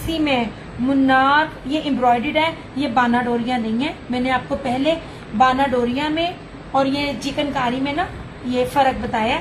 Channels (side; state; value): both; identical; correlation 1.00